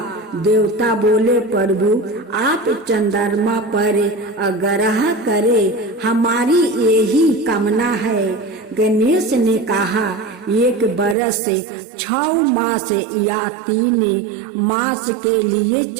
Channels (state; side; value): drops out; left; at 11.2 s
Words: देवता बोले, प्रभु आप चंद्रमा पर आग्रह करें, हमारी यही कामना है। गणेश ने कहा, एक बरस 6 मास या 3 मास के लिए